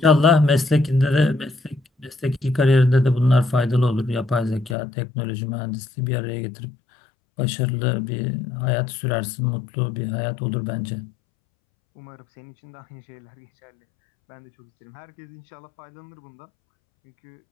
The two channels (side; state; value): right; drops out; at 4.8 s